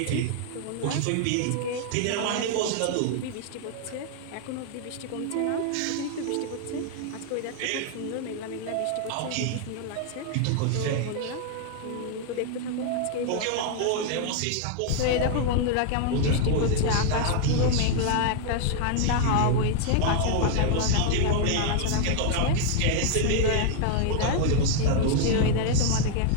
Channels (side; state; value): both; different; correlation 0.00